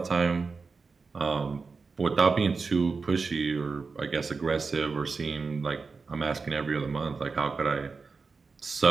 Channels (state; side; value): quieter; left; 4.6 dB